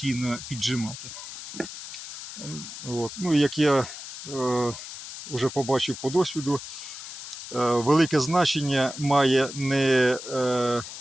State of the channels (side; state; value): left; noise; hiss, 11 dB below the sound